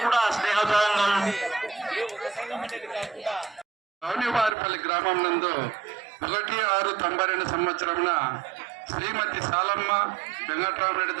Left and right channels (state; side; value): drops out; left; at 4.5 s